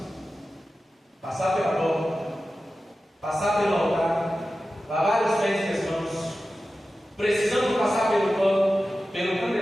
passar pela porta, passar pelo altar, lavar os pés e as mãos. Precisamos passar pelo pano, pelo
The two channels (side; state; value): both; normal; correlation 0.94